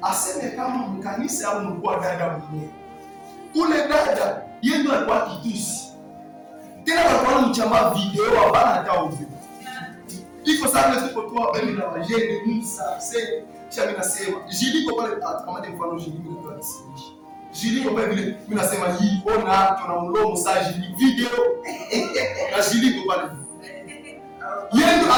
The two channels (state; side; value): identical; both; correlation 1.00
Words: aseme kama mkanisa au mkuu dada mwenyewe. Ule dada yeye ndio alikuwa kitusi. Tena alikuwa mchamba video hapana hata uzi. Iko sana tulipotoa bemi na wajeni Musa sasa kisha mimi nasema jiliko pale kama mfano jiliko ndio tunasimisha. Jiliko pale vile mimi nasema hii ona tuna mlomo sasa jiliko video na jiliko pale. Yeye ndio